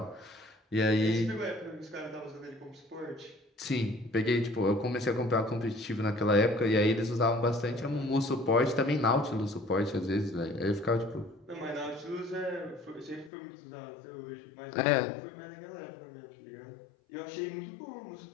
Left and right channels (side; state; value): right; drops out; at 13.3 s